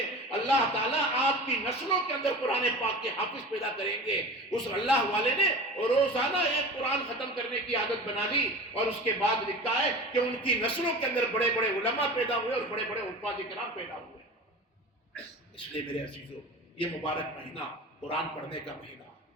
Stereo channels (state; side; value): normal; both; correlation 0.35